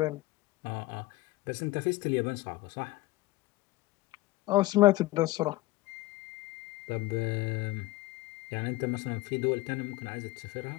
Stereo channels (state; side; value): quieter; right; 19.3 dB